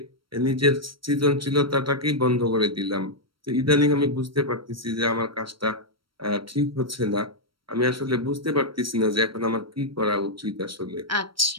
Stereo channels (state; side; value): late; left; 0.74 ms